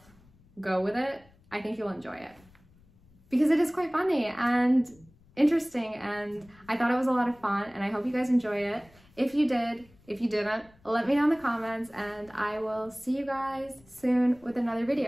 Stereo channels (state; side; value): noise; left; rumble, 29 dB below the sound